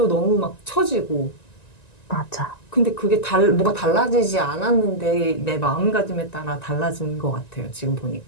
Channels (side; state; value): right; late; 1.9 ms